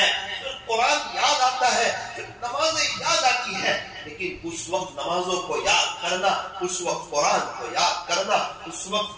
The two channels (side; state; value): both; identical; correlation 1.00